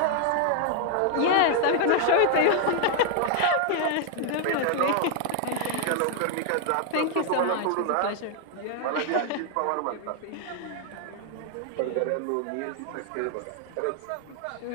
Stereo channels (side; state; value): both; different; correlation 0.00